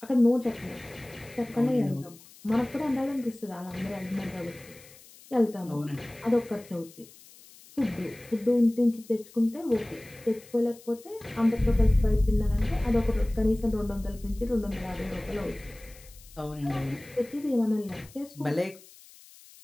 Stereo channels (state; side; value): noise; left; hiss, 22 dB below the sound